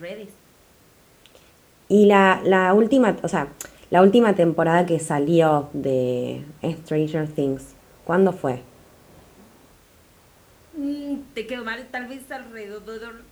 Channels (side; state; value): both; identical; correlation 1.00